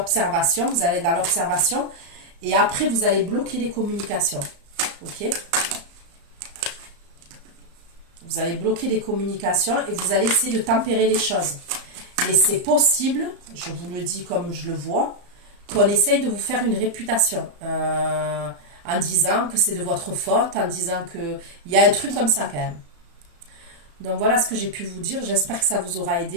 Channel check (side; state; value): left; late; 35 ms